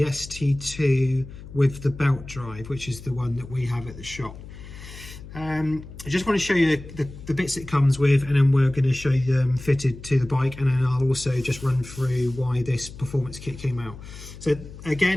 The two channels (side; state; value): left; noise; hum, 15 dB below the sound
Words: ST2 with the belt drive, which is the one that we have at the shop. I just want to show you the bits it comes with, and then we're going to show you them fitted to the bike, and then I'll also just run through why this performance kit came out. So